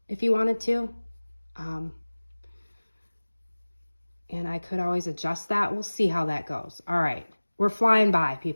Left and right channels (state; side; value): inverted; both; correlation -1.00